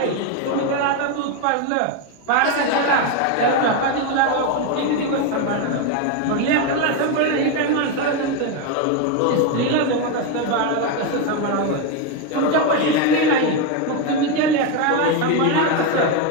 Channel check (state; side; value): different; both; correlation 0.02